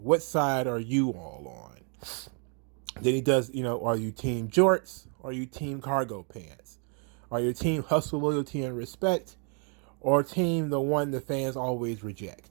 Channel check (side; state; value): left; quieter; 39.0 dB